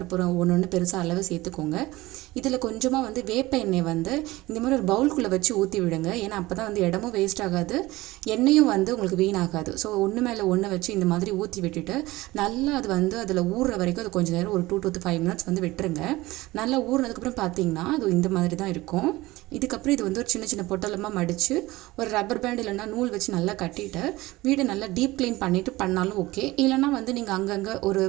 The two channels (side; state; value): left; quieter; 19.2 dB